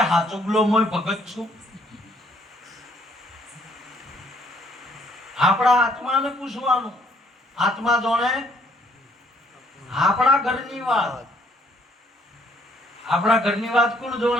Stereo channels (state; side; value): normal; both; correlation 0.65